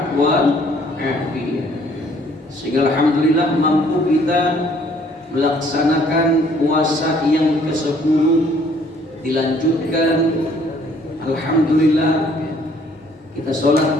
wal afiat, sehingga alhamdulillah mampu kita melaksanakan puasa yang ke-10 dilanjutkan. Alhamdulillah kita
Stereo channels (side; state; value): both; normal; correlation 0.61